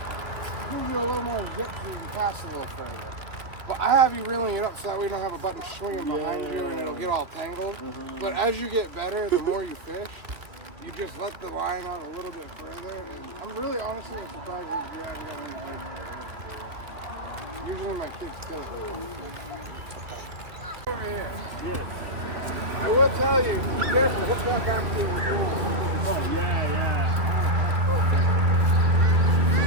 gives you a little more zip so you can cast a little further. But I have you reeling it up so that we don't have a button swinging behind you and it'll get all tangled. But as you get better, the more you fish, you just let the line out a little bit further. And I'm really honestly surprised that you haven't got many bites. Usually my kids kill it with one fish. Over here. Yes. I will tell you, be careful, hook that back to your door. Oh, yeah.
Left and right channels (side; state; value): left; late; 2.6 ms